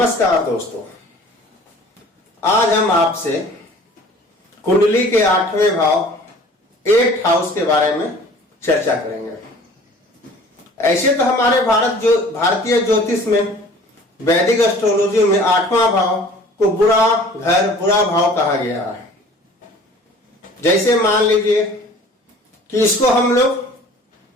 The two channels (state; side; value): normal; both; correlation 0.48